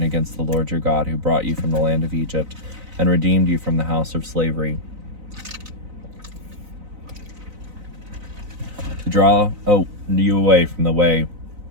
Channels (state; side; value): late; left; 4.0 ms